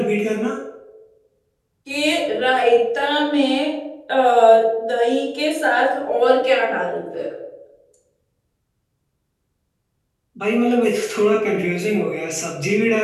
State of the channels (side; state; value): both; identical; correlation 1.00